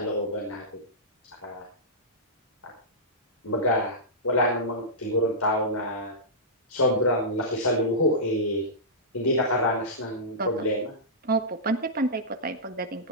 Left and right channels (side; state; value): both; normal; correlation -0.16